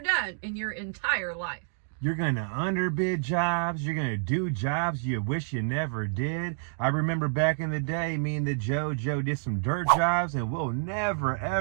done in your entire life. You're going to underbid jobs. You're going to do jobs you wish you never did. I remember back in the day, me and the JoJo did some dirt jobs, and we'll never,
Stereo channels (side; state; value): left; silent; digital silence